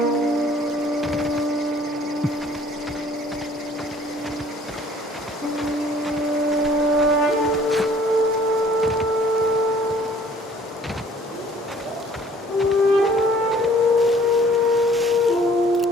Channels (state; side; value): normal; both; correlation 0.55